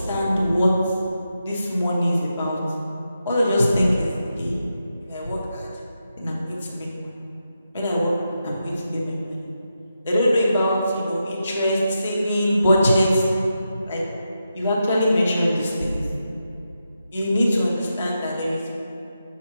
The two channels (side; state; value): both; inverted; correlation -0.87